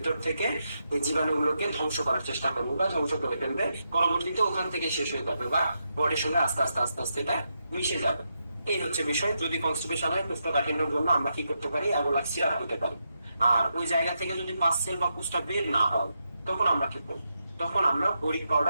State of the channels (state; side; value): inverted; both; correlation -0.84